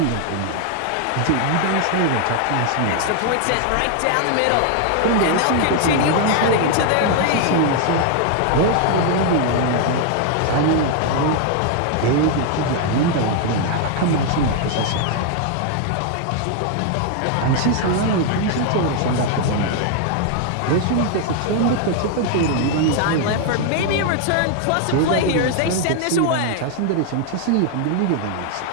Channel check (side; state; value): both; different; correlation 0.00